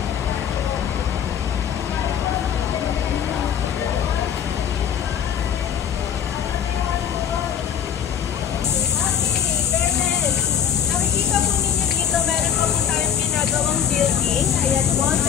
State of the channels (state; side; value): quieter; right; 8.6 dB